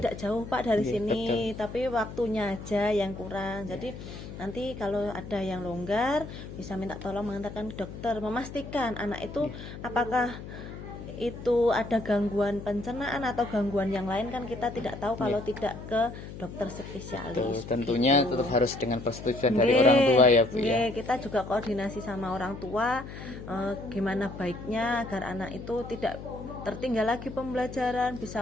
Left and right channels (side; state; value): left; noise; hum, 11 dB below the sound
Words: jauh Pak dari sini, tapi waktunya aja yang kurang. Jadi nanti kalau ada yang longgar bisa minta tolong mengantarkan ke dokter, memastikan anak itu apakah itu ada gangguan pencernaan atau gangguan yang lain, kan kita tidak tahu kalau tidak ke dokter spesialis. Tentunya tetap harus dengan persetujuan dari orang tua ya Bu ya. Kita juga koordinasi sama orang tua gimana baiknya agar anak itu tidak tertinggal lagi pembelajaran, bisa